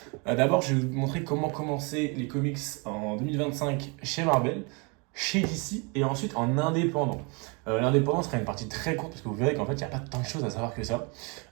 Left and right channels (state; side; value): quieter; left; 31.9 dB